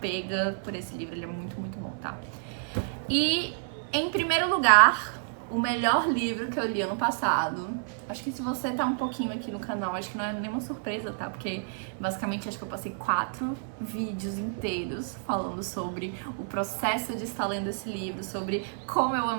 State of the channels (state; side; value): silent; left; 58 dB below the other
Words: por esse livro. Ele é muito, muito bom, tá? E, em primeiro lugar, o melhor livro que eu li ano passado. Acho que se você tá um pouquinho aqui no canal, acho que não é nenhuma surpresa, tá? Porque, basicamente, acho que eu passei 4 vídeos inteiros falando sobre o processo de estar lendo esse livro, sobre como eu